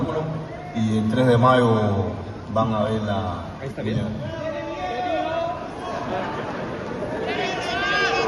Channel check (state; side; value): identical; both; correlation 1.00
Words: y el 3 de mayo van a ver la pelea.